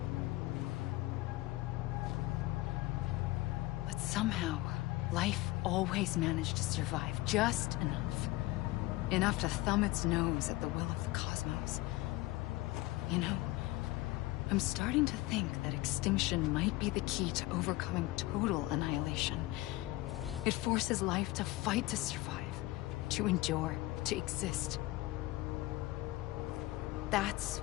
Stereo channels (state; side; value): quieter; right; 18.9 dB